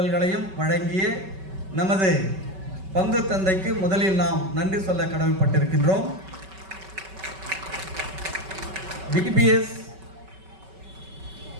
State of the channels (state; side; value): late; left; 5.3 ms